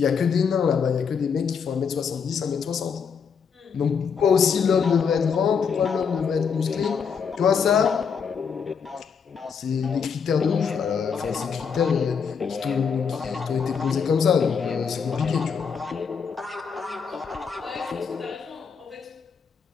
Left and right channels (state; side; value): quieter; right; 6.3 dB